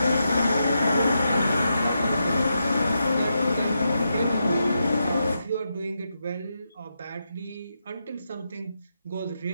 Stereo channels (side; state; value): both; inverted; correlation -0.85